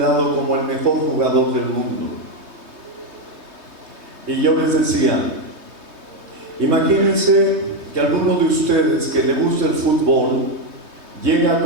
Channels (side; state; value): left; late; 3.2 ms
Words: como el mejor jugador del mundo. Y yo les decía, imagínense que alguno de ustedes que le gusta el fútbol llega